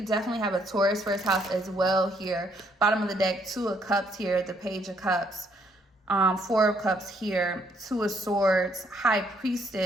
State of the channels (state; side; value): normal; both; correlation 0.69